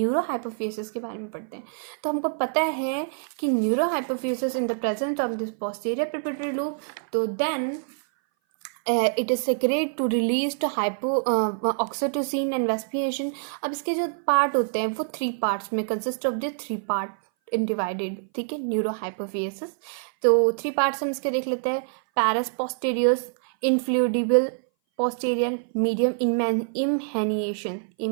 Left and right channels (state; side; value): silent; left; 58 dB below the other